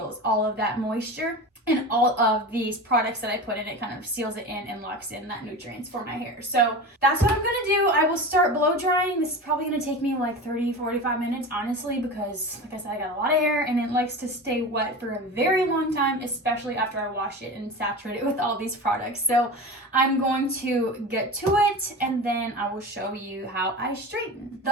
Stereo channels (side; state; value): both; normal; correlation 0.30